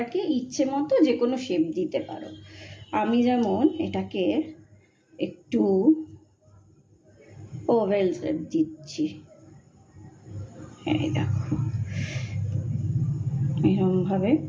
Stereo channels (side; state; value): both; identical; correlation 1.00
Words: ইচ্ছে মতো যে কোনো শেপ দিতে পারো। আমি যেমন এটাকে একটু ওভেল শেপ দিচ্ছি, এই দেখো এরকমভাবে